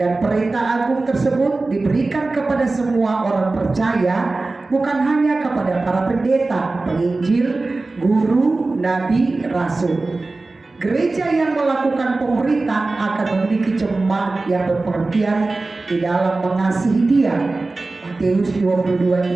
perintah agung tersebut diberikan kepada semua orang percaya, bukan hanya kepada para pendeta, penginjil, guru, nabi, rasul. Gereja yang melakukan pemuritan akan memiliki jemaat yang berpengertian di dalam mengasihi Dia. Matius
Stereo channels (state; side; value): quieter; left; 3.4 dB